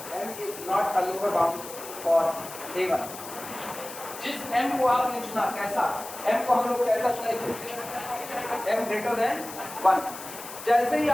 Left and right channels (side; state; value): left; noise; hiss, 12 dB below the sound